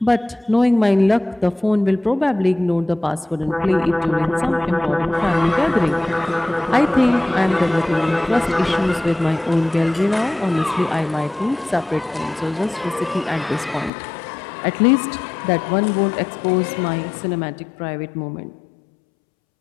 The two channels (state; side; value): drops out; right; at 13.9 s